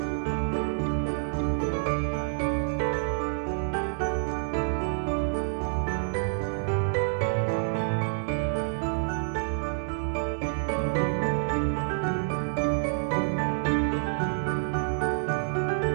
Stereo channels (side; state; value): left; silent; 56 dB below the other